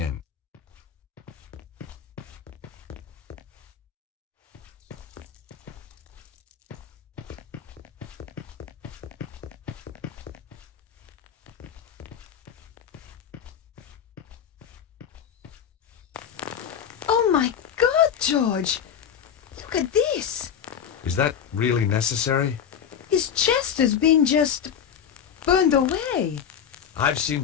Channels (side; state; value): right; quieter; 8.4 dB